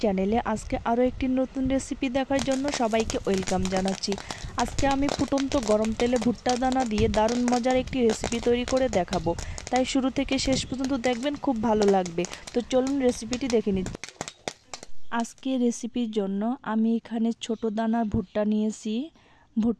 চ্যানেলে আজকে আরও একটি নতুন রেসিপি দেখার জন্য সবাইকে ওয়েলকাম জানাচ্ছি। আজকে আমি ফুটন্ত গরম তেলে ভুট্টা দানা দিয়ে দারুণ মজার একটি রেসিপি তৈরি করে দেখাবো, তাই শুরু থেকে শেষ পর্যন্ত দেখবেন, খুব ভালো লাগবে। তো চলুন রেসিপিটি দেখে নিই। আজকে রেসিপির জন্য আমি এখানে ছোট দানার ভুট্টা নিয়েছি।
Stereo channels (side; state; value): both; identical; correlation 1.00